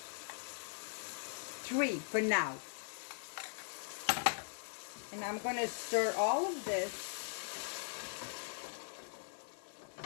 for now. And I'm gonna stir all of this.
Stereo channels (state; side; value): silent; right; digital silence